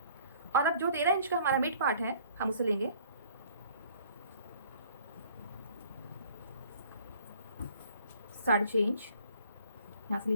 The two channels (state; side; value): inverted; both; correlation -0.55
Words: और अब जो 13 इंच का हमारा मिड पार्ट है हम उसे लेंगे, साढ़े 6 इंच यहाँ से